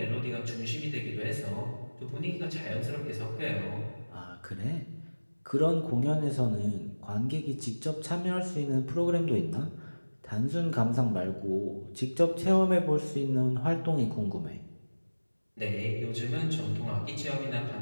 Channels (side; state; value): both; inverted; correlation -1.00